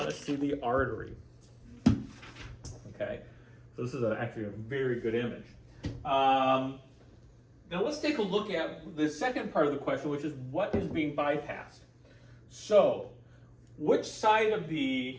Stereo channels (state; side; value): identical; both; correlation 1.00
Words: to see the artery. Okay, so this is actually a very good image. Now let's take a look at the second part of the question, which is what is being bypassed. So, which side of